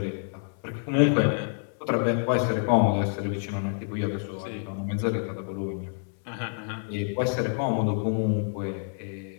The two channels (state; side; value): silent; right; 60 dB below the other